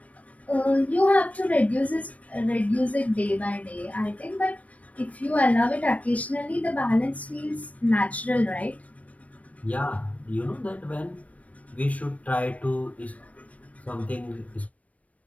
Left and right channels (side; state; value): right; late; 0.067 ms